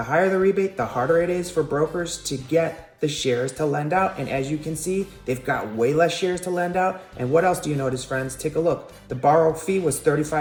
higher the rebate, the harder it is for brokers to get the shares to lend out. And as you can see, they've got way less shares to lend out. And what else do you notice, friends? Take a look. The borrow fee was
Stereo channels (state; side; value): identical; both; correlation 1.00